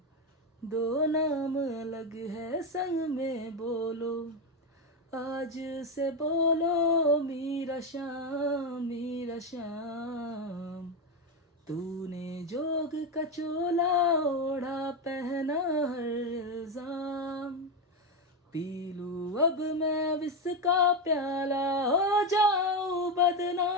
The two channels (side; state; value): both; normal; correlation 0.10